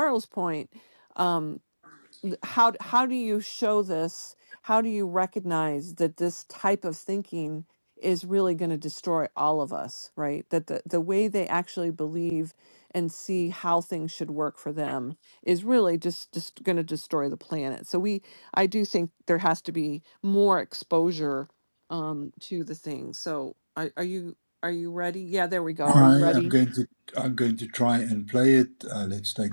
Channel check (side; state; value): both; inverted; correlation -1.00